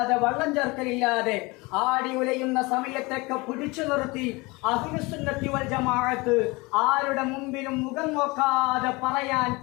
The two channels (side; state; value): right; quieter; 24.6 dB